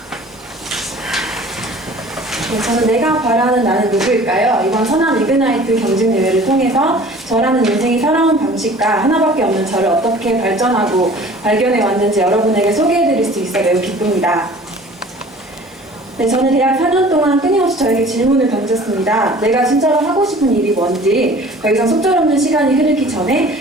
네, 저는 내가 바라는 나는 누구일까요? 이번 선한 이그나이트 경진대회를 통해서 저라는 인생이 살아온 방식과 하나밖에 없는 저를 어떻게 발전하고 발견해 왔는지 여러분에게 소개해드릴 수 있어 매우 기쁩니다. 네, 저는 대학 4년 동안 끊임없이 저에게 질문을 던졌습니다. 내가 진짜로 하고 싶은 일이 뭔지 더 이상 속절없는 시간이 흐르기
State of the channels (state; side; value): normal; both; correlation 0.47